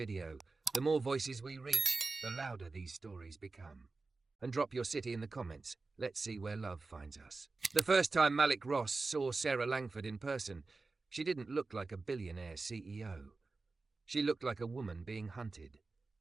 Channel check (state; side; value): quieter; left; 3.8 dB